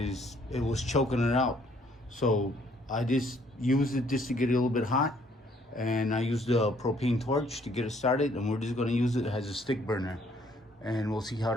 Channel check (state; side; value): normal; both; correlation 0.64